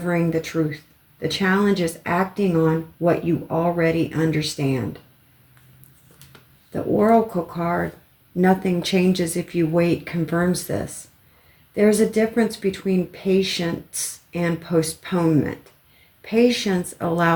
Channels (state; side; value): identical; both; correlation 1.00